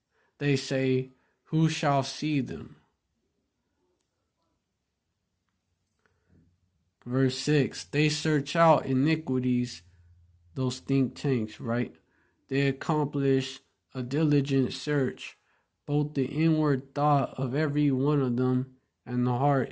They say, who shall see them? Verse 6, they search out iniquities, those think tanks, right? They accomplish a diligent search, both the inward thought of every one of them and the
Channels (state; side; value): identical; both; correlation 1.00